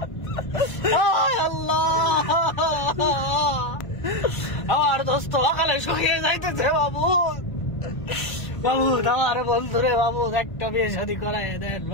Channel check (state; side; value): late; right; 1.5 ms